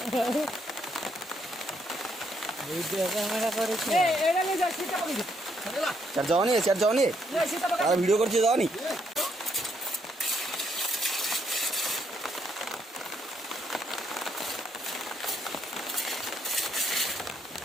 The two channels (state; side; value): normal; both; correlation 0.74